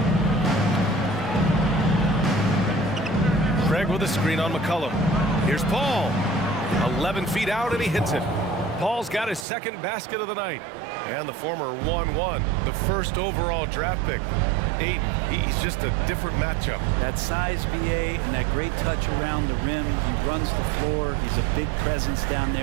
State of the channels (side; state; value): left; drops out; at 9.5 s